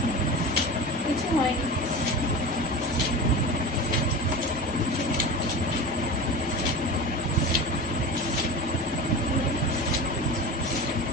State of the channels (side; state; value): both; normal; correlation 0.29